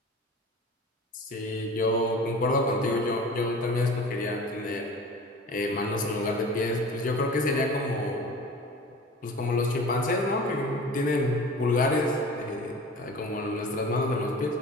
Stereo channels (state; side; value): normal; both; correlation 0.39